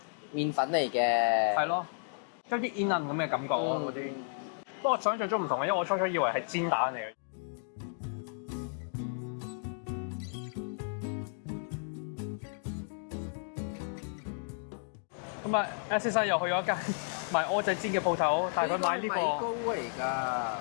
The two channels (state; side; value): silent; right; digital silence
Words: 麵粉嚟嘅。係咯，有啲煙韌咁嘅感覺啊嗰啲。不過我想象中唔同嘅，因為我初初以為係煎蛋嚟嘅。咁啊 ，S 先生又去咗一間賣蚵仔煎嘅鋪頭，帶佢買呢米糕個。嚟㗎。